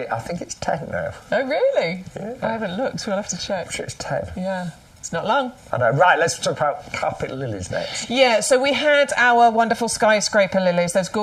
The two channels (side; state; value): both; identical; correlation 1.00